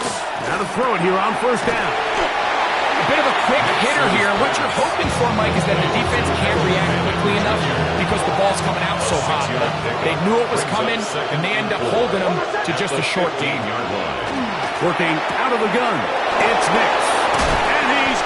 now to throw it here on 1st down. A bit of a quick hitter here. What you're hoping for, Mike, is that the defense can't react quickly enough because the ball's coming out so hot. They knew it was coming, and they end up holding them to just a short gain. Working out of the gun. It's Nix. And he's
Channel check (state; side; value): identical; both; correlation 1.00